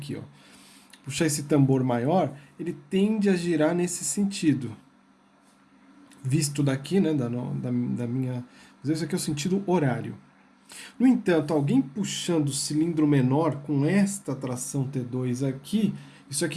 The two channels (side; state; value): both; identical; correlation 1.00